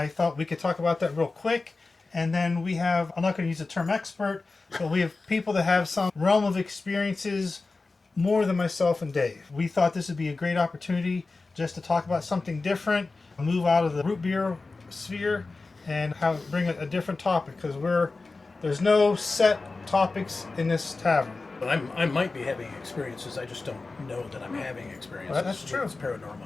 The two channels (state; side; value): quieter; right; 3.7 dB